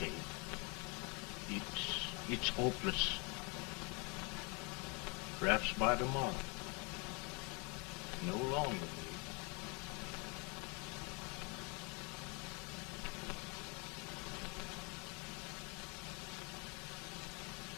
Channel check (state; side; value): quieter; right; 31.5 dB